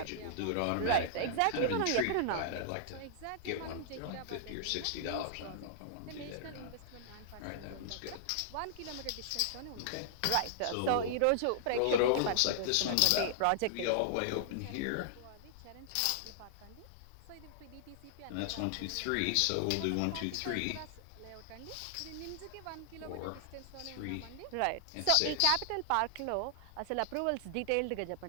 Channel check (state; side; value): different; both; correlation -0.01